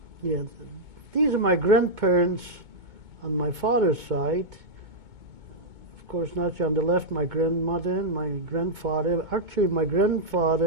Yeah, these are my grandparents on my father's side. Of course, not on the left, my grandmother and my grandfather. Actually, my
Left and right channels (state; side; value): late; left; 2.2 ms